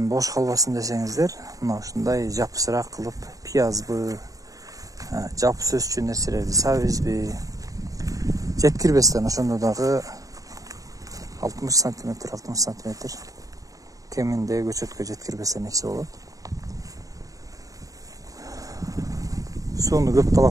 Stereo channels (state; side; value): late; left; 0.17 ms